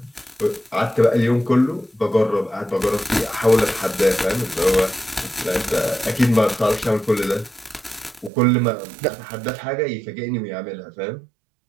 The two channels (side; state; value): left; drops out; at 8.3 s